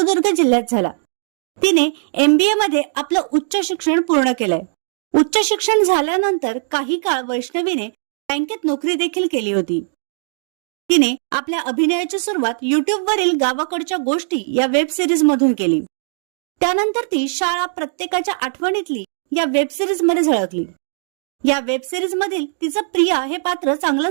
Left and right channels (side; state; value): left; silent; digital silence